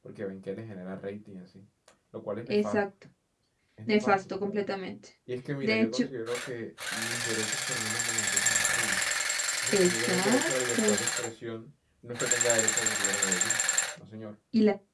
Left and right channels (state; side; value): identical; both; correlation 1.00